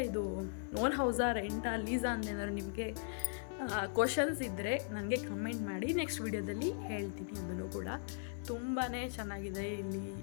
ಇದು ಓನ್ ಹೌಸಾ, ರೆಂಟಾ, ಲೀಸಾ ಅಂತೇನಾದ್ರು ನಿಮಗೆ ಕ್ವಶನ್ಸ್ ಇದ್ದರೆ ನನಗೆ ಕಮೆಂಟ್ ಮಾಡಿ. ನೆಕ್ಸ್ಟ್ ವಿಡಿಯೋದಲ್ಲಿ ಹೇಳ್ತೀನಿ. ಅದನ್ನು ಕೂಡ ತುಂಬಾ ಚೆನ್ನಾಗಿದೆ. ಇಲ್ಲಿ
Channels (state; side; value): silent; right; 52 dB below the other